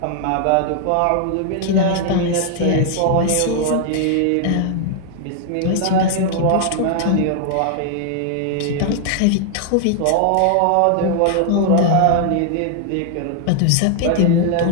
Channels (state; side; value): different; both; correlation 0.00